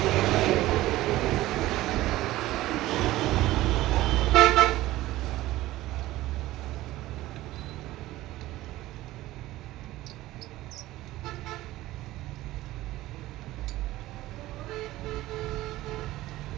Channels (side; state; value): left; quieter; 16.6 dB